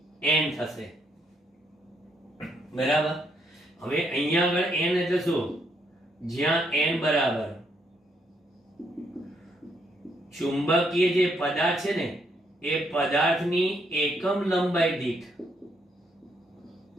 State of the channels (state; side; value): normal; both; correlation 0.74